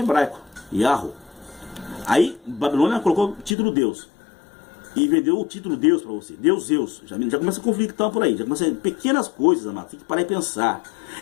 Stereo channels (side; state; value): right; drops out; at 3.6 s